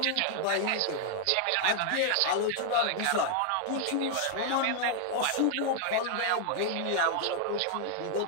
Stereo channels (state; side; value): different; both; correlation 0.00